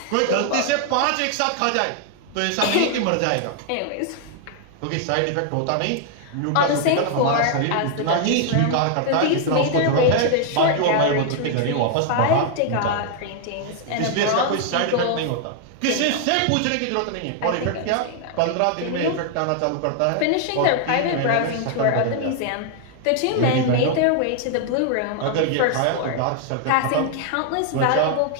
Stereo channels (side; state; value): both; different; correlation 0.00